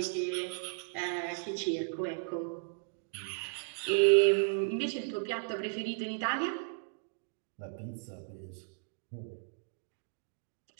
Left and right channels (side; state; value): left; silent; digital silence